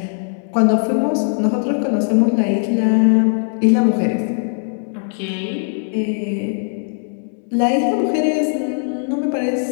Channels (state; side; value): silent; right; digital silence